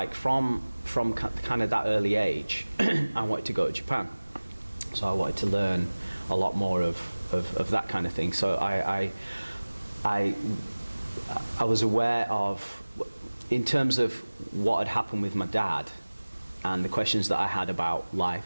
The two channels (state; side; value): inverted; both; correlation -1.00